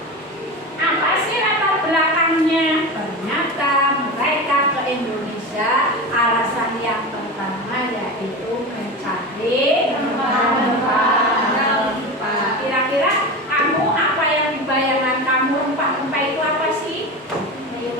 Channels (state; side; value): normal; both; correlation 0.25